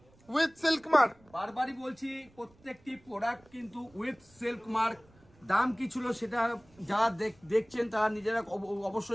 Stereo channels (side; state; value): right; noise; rumble, 29 dB below the sound